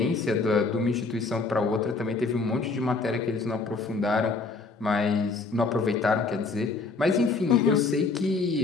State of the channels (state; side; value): quieter; right; 3.9 dB